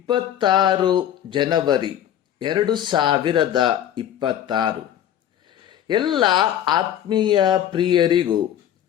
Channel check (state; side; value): quieter; right; 10.7 dB